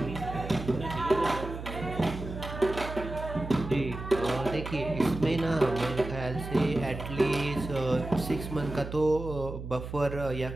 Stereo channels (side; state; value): right; noise; hum, 9 dB below the sound